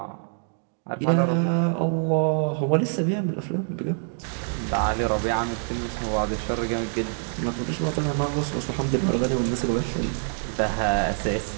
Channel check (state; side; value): silent; left; 58 dB below the other